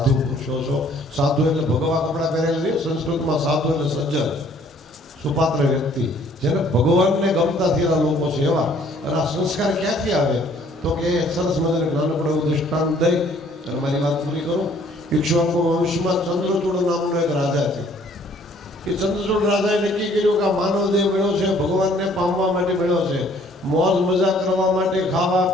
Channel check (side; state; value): both; normal; correlation 0.59